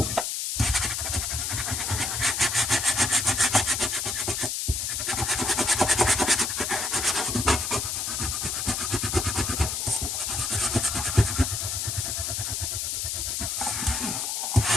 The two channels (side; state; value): left; noise; hiss, 1 dB below the sound